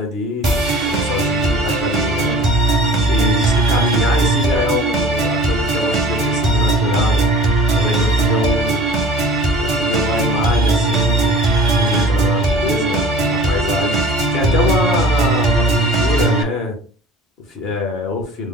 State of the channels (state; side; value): normal; both; correlation 0.44